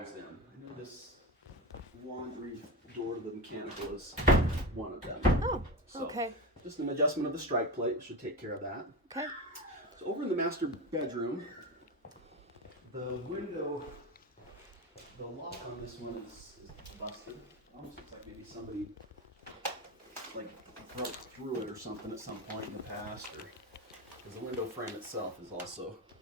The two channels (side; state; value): both; normal; correlation 0.21